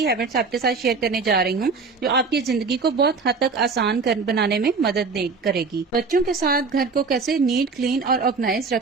हैबिट्स आपके साथ शेयर करने जा रही हूँ जो आपकी जिंदगी को बहुत हद तक आसान बनाने में मदद करेगी। बच्चों के साथ घर को कैसे नीट, क्लीन और ऑर्गेनाइज रख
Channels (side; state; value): left; quieter; 4.6 dB